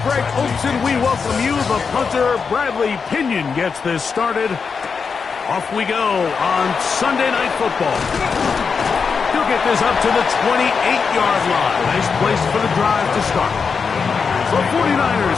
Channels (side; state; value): right; quieter; 5.5 dB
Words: Greg Olson, we welcome you. The punter, Bradley Pinion, gets this started. Off we go on Sunday Night Football. He'll get this up to the 28-yard line. Nice place for the drive to start. The